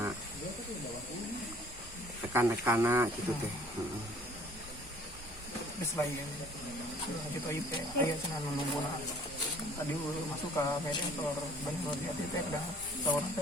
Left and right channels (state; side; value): normal; both; correlation 0.55